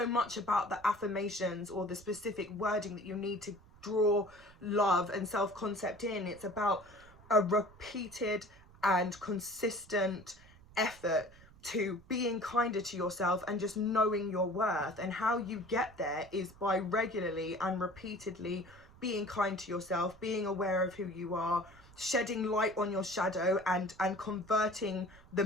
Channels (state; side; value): noise; right; rumble, 24 dB below the sound